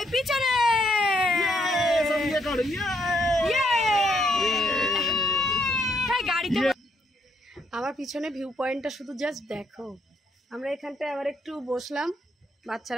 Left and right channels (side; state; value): both; normal; correlation 0.72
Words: পিছনে। গাড়িতে আমার পিছনে ভিউ পয়েন্টটা শুধু জাস্ট দেখো। আমরা এখানটায় আবার একটু বসলাম,